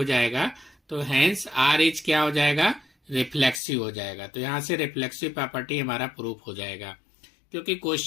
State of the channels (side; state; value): right; drops out; at 3.6 s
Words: जाएगा। तो हैंस आर इज क्या हो जाएगा, रिफ्लेक्सिव हो जाएगा। तो यहाँ से रिफ्लेक्सिव प्रॉपर्टी हमारा प्रूफ हो जाएगा। क्योंकि